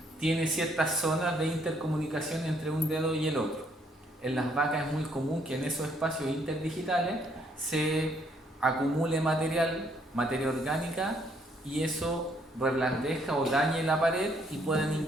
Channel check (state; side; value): normal; both; correlation 0.68